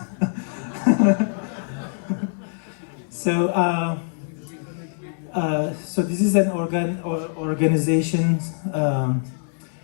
So so this is an organization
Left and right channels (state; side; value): silent; right; digital silence